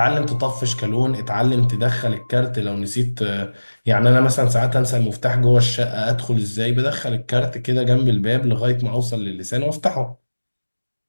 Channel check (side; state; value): both; inverted; correlation -1.00